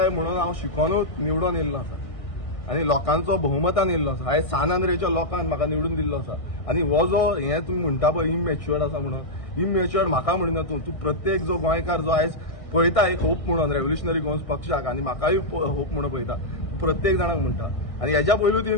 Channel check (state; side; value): late; right; 1.6 ms